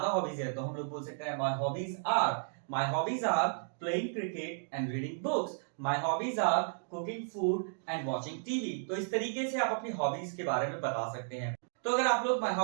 हॉबीज है तो हम लोग बोल सकते हैं my hobbies are playing cricket and reading books. My hobbies are cooking food and watching TV. तो इस तरीके से आप अपनी हॉबीज के बारे में बता सकते हैं। तो अगर आप लोग my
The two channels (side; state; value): left; silent; digital silence